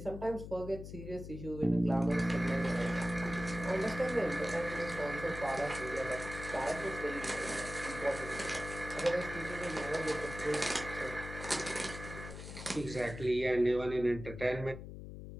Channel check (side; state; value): left; noise; hum, 10 dB below the sound